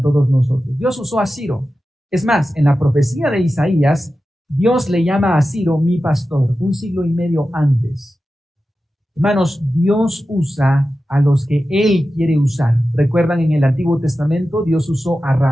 todos nosotros. Dios usó a Ciro. Es más, en la profecía de Isaías, Dios le llama a Ciro mi pastor, un siglo y medio antes. Hermanos, Dios usa a los que Él quiere usar. ¿Recuerdan en el Antiguo Testamento? Dios usó a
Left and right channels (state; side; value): normal; both; correlation 0.93